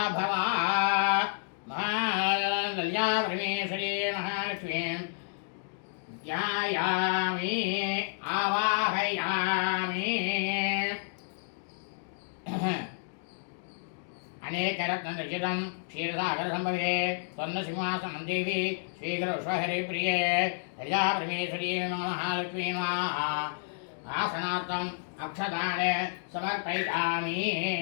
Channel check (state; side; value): silent; right; digital silence